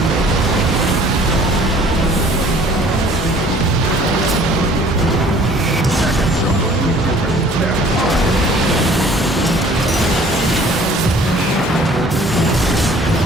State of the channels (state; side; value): normal; both; correlation 0.53